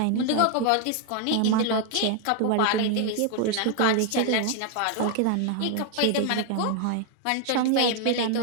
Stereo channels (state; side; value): different; both; correlation 0.00